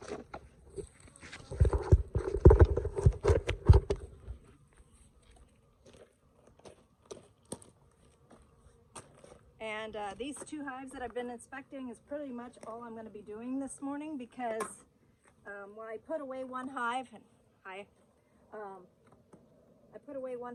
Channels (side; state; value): both; identical; correlation 1.00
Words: And these two hives that I've been inspecting is pretty much all I'm going to be doing this morning, because when I put away one hive, and I put away